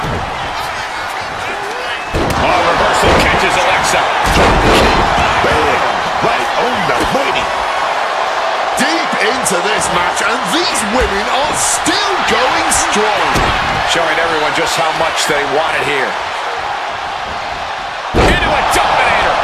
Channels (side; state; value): both; identical; correlation 1.00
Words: Oh, reversal catches Alexa. Bam! Right on the money. Deep into this match, and these women are still going strong. Showing everyone just how much they want it here. Into a dominator.